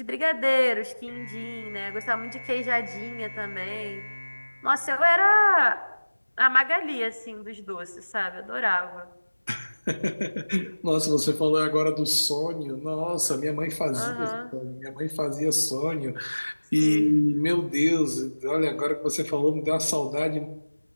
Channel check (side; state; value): both; inverted; correlation -1.00